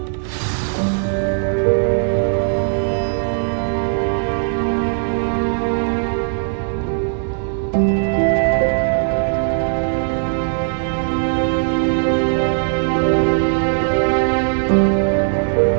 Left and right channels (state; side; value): silent; left; 62 dB below the other